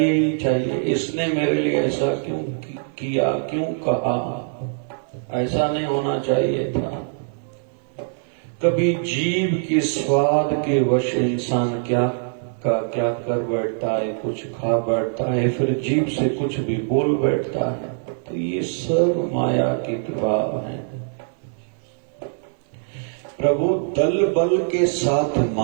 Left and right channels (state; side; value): silent; left; digital silence